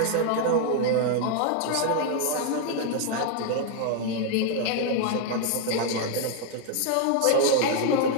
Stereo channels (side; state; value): both; different; correlation 0.00